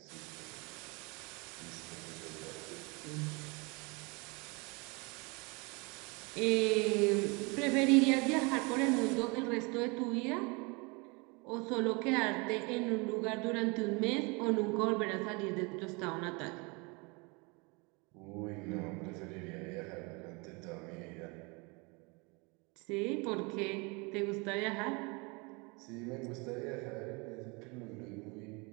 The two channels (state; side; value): quieter; left; 28.9 dB